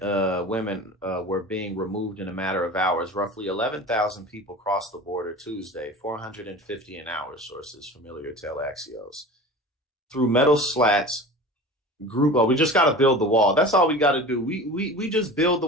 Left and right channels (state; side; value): normal; both; correlation 0.35